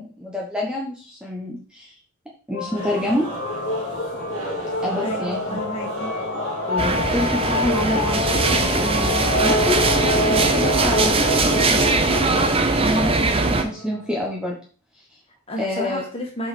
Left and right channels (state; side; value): normal; both; correlation 0.23